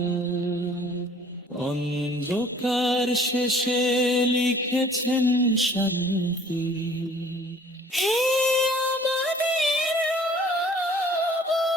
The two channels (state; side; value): normal; both; correlation 0.53